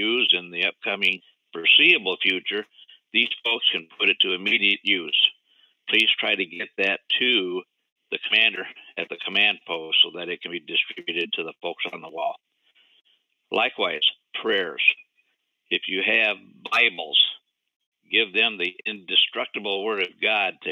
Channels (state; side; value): identical; both; correlation 1.00